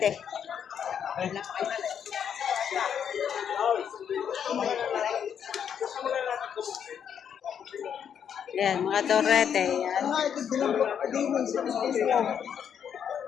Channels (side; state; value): right; quieter; 8.2 dB